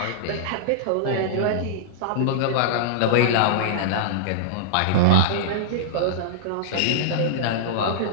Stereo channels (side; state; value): both; different; correlation -0.02